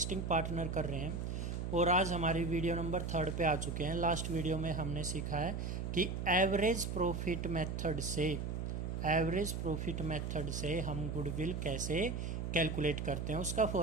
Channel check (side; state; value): right; noise; hum, 3 dB below the sound